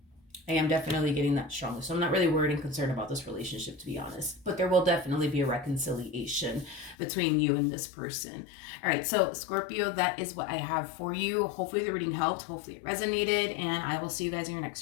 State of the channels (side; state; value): right; drops out; at 7.0 s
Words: I am definitely getting that strongly. So I'm not really worried and concerned about this relationship, to be honest. But there will definitely be a reconciliation between you and this person. All right, so Scorpio, that is what I have for you. Hopefully the reading helped. Hopefully it resonated. And I will see you guys in your